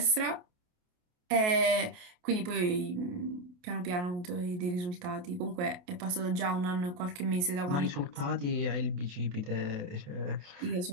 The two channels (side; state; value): left; late; 28 ms